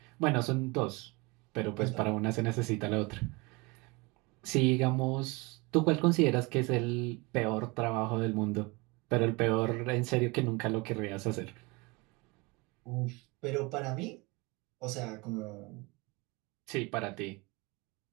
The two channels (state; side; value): quieter; left; 26.1 dB